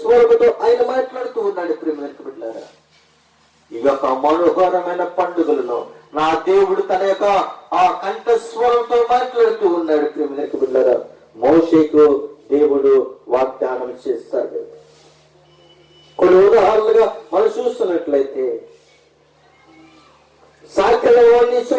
ఆయన మాట్లాడుతూ ఉన్నాడు. ప్రేమలకు బిడ్డలారా, ఈ యొక్క మనోహరమైన పండుగలలో నా దేవుడు తన యొక్క ఆ కంఠస్వరంతో మాట్లాడుతూ ఉన్నాడు. ప్రేమలకు బిడ్డలారా, మోషేకు దేవుడు వాగ్దానం చేస్తాడు. కొన్ని ఉదాహరణలుగా మనం చూస్తున్నట్లయితే సాకలవాణ్ణి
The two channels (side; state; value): both; identical; correlation 1.00